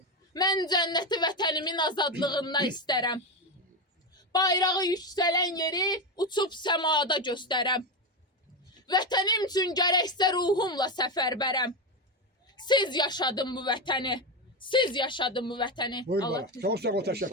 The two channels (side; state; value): both; normal; correlation 0.13